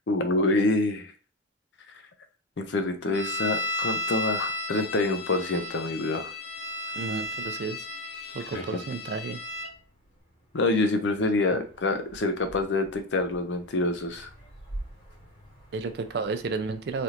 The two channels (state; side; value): normal; both; correlation 0.14